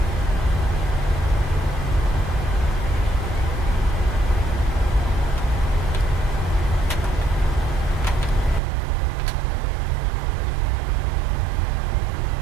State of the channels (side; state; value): left; drops out; at 8.6 s